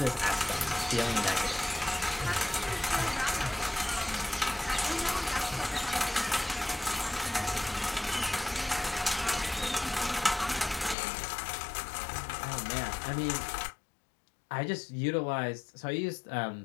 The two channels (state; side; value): drops out; right; at 11.0 s